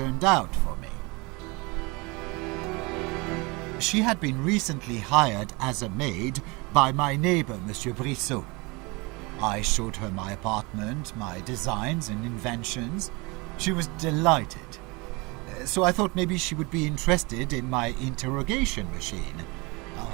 out for me. She had been recently hired as a maid by my neighbor, Monsieur Brissot. I showed her my apartment, my designs and inventions. She was delighted. So I thought maybe she would be interested in my interrogation machine.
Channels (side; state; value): left; quieter; 26.6 dB